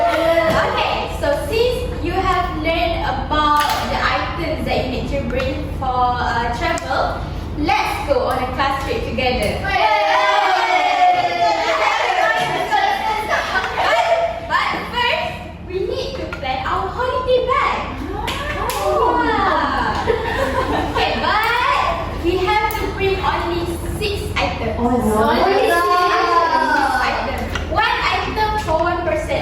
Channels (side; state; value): both; identical; correlation 1.00